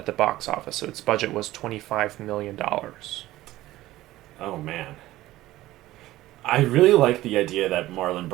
the box office. So its budget was $25 million. Oh, man. I really like the idea that Marlon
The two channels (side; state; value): left; quieter; 16.2 dB